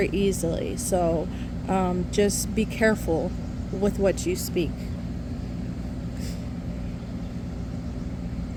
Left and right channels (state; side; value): identical; both; correlation 1.00